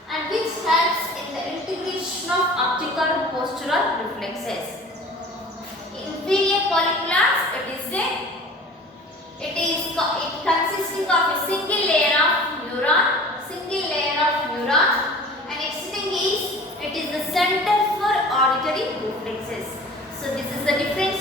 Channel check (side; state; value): both; normal; correlation 0.43